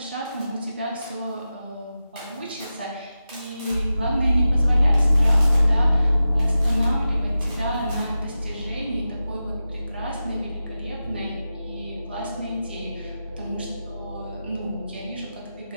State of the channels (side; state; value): both; inverted; correlation -0.92